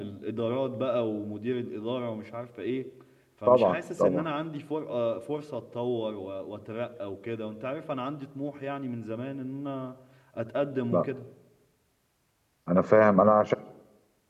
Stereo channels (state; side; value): identical; both; correlation 1.00